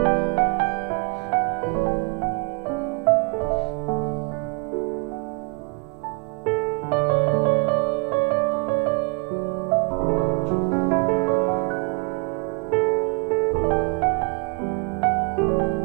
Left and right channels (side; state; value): left; quieter; 33.4 dB